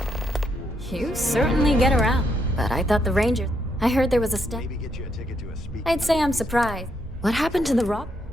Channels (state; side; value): normal; both; correlation 0.77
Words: You certainly get around. But I thought the Rangers. I heard there was a step. Maybe get you a ticket to a speak. I'd say I'm surprised. What happened to the rock?